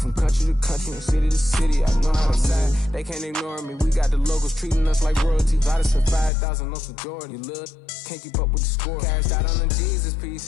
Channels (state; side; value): drops out; right; at 6.3 s